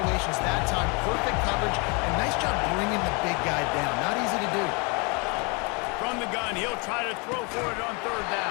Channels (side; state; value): right; quieter; 31.5 dB